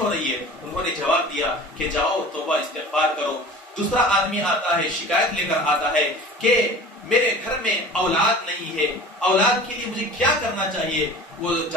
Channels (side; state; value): both; normal; correlation 0.41